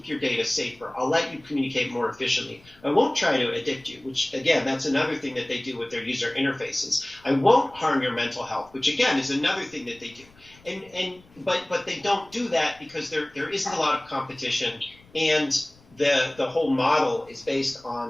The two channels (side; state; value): left; noise; rumble, 27 dB below the sound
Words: your data safer. I'll let you communicate more efficiently. I won't try to addict you, which, again, that's another thing that they do with their user interfaces. I won't harm your mental health, which, again, is another thing that they do. But they don't do that because there isn't a lot of competition, and the whole model is based on